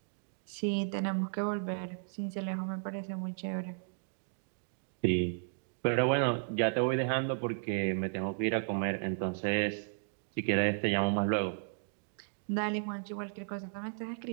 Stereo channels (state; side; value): silent; left; digital silence